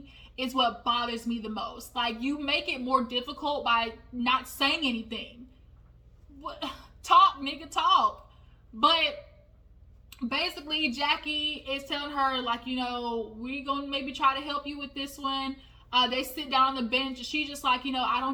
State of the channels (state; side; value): identical; both; correlation 1.00